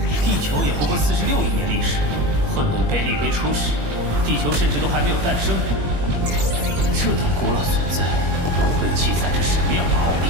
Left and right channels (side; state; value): left; late; 21 ms